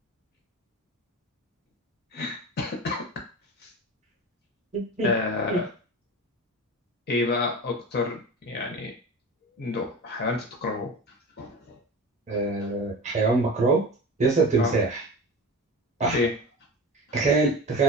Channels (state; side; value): normal; both; correlation 0.31